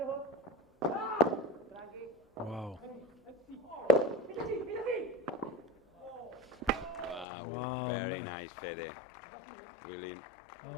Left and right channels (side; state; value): right; drops out; at 7.2 s